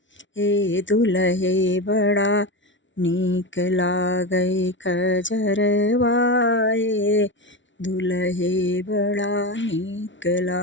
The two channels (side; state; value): right; late; 0.55 ms